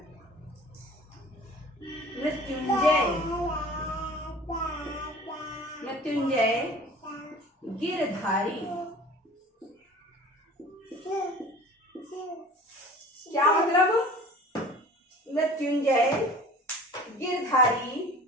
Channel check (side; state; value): both; normal; correlation 0.43